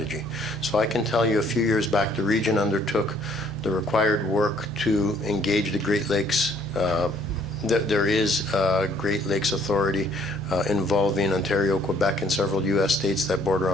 So I can tell you a few years back the region undertook the required work to engage the Great Lakes. There is a Great Lakes Authority involving Ontario, Quebec, and several U.S. states that border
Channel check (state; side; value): normal; both; correlation 0.62